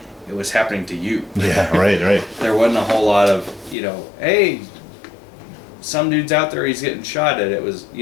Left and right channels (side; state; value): right; drops out; at 3.8 s